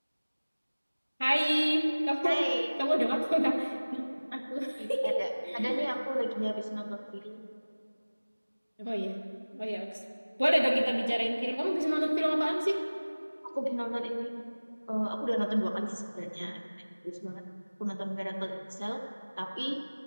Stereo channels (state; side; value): inverted; both; correlation -1.00